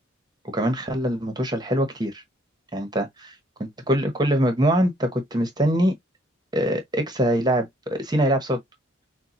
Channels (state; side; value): normal; both; correlation 0.65